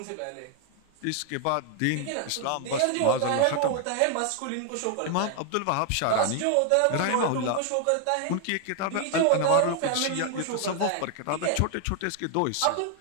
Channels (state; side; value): different; both; correlation 0.00